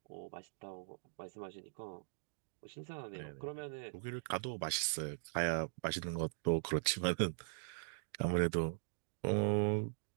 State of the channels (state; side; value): silent; left; digital silence